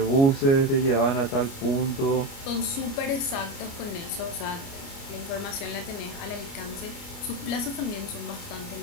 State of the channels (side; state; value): right; late; 29 ms